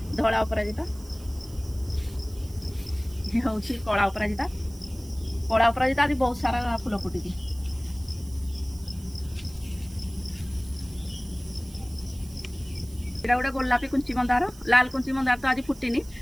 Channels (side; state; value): right; noise; hiss, 21 dB below the sound